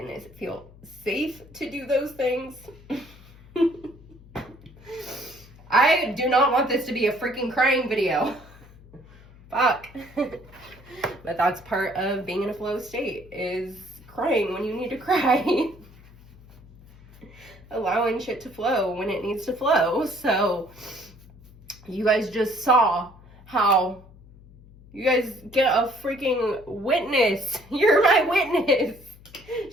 feel safe to do those things. I do not want this to be a freaking crying video. Fuck. But that's part of being in a flow state, is crying when you need to cry. Allowing shit to flow when it needs to flow. So you guys just saw how you guys get a freaking witness. You're my witness.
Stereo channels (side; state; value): left; noise; hum, 23 dB below the sound